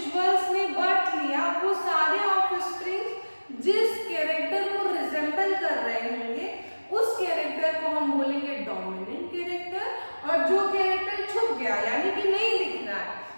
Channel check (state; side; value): inverted; both; correlation -1.00